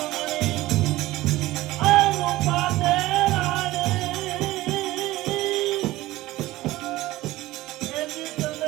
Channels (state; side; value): quieter; left; 17.4 dB